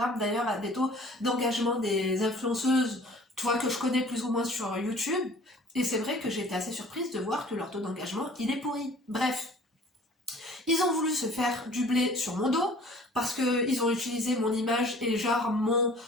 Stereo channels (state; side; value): normal; both; correlation 0.49